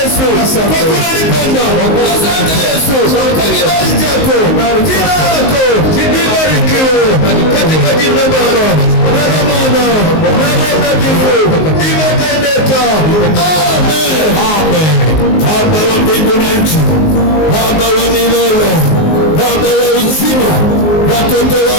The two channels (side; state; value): right; late; 19 ms